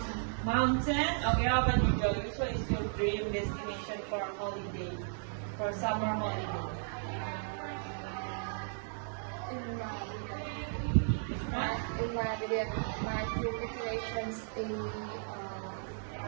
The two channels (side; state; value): left; silent; digital silence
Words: mountain? Okay, how about you, Joey? Which one is your dream destination for a holiday? For summer holiday? in my video, my dream destinations in